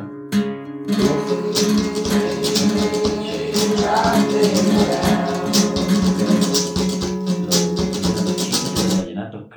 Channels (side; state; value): both; identical; correlation 1.00